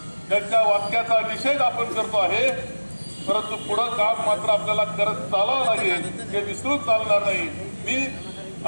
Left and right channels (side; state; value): both; inverted; correlation -1.00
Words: त्यांच्या वाक्याचा निषेध आपण करतो आहे. परंतु पुढं काम मात्र आपल्याला करत चालावं लागेल, हे विसरून चालणार नाही. मी